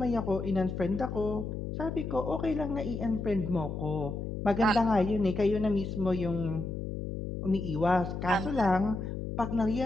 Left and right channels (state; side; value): noise; left; hum, 5 dB below the sound